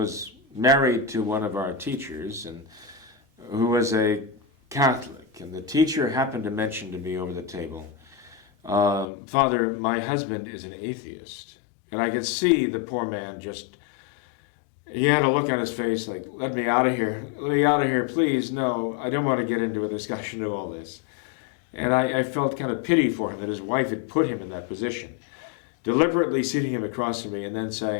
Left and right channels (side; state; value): right; drops out; at 9.1 s